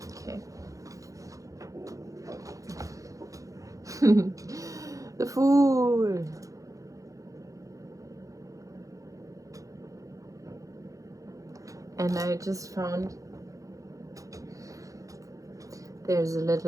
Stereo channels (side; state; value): left; late; 0.16 ms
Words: Okay. The Fool. And I just found there's a